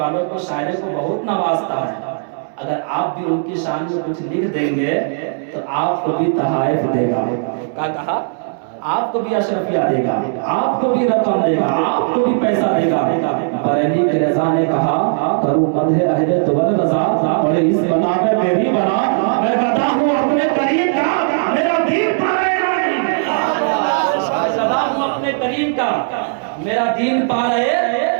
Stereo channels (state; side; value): silent; left; digital silence